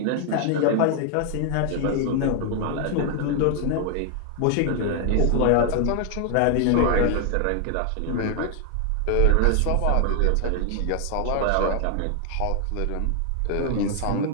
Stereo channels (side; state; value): both; different; correlation 0.00